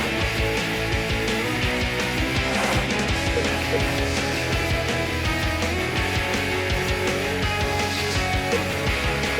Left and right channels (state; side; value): identical; both; correlation 1.00